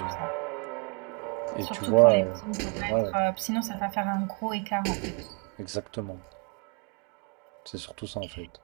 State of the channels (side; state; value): left; quieter; 33.3 dB